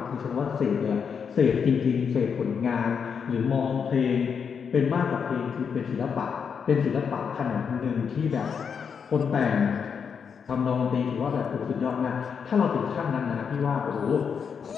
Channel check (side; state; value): right; quieter; 6.6 dB